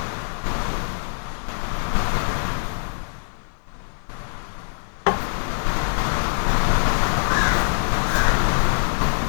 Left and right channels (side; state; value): right; silent; digital silence